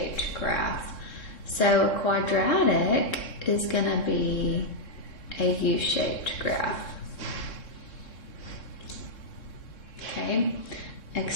graph. So a quadratic is going to be a U-shaped graph. Okay,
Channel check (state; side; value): late; right; 3.7 ms